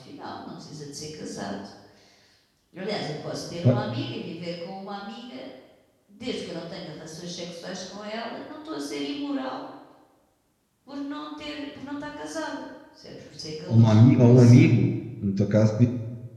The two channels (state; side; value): identical; both; correlation 1.00